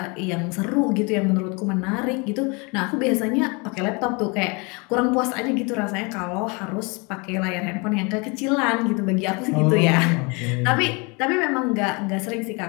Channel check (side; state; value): right; quieter; 29.8 dB